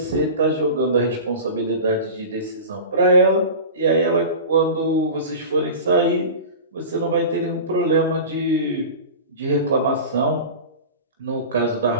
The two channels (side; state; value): both; inverted; correlation -0.32